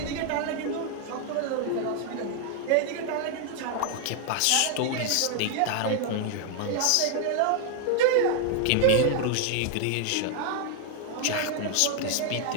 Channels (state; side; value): different; both; correlation 0.00